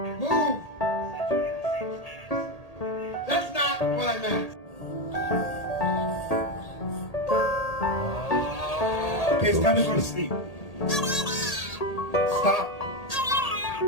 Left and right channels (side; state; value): right; late; 1.8 ms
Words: That's not what I meant. Okay, it's time to go to sleep. Stop.